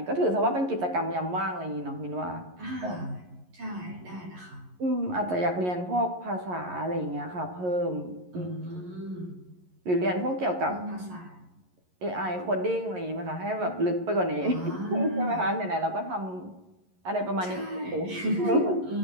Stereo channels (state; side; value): late; left; 11 ms